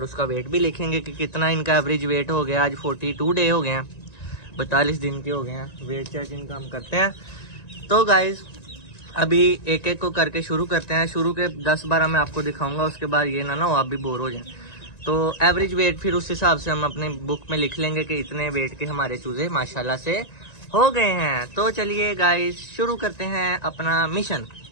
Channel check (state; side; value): late; right; 1.9 ms